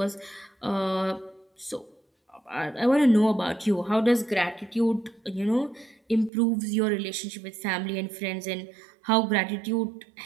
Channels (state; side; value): drops out; left; at 6.3 s